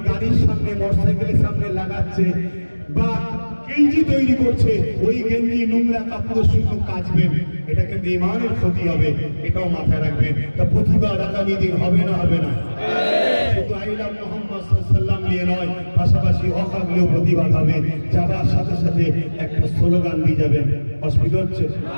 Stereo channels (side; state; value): both; inverted; correlation -1.00